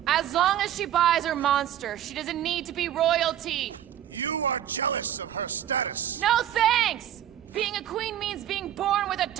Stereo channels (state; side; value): quieter; left; 11.1 dB